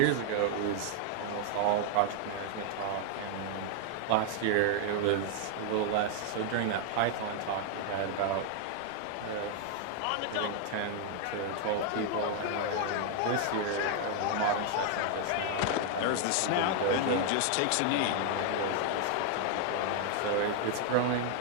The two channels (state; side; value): different; both; correlation 0.00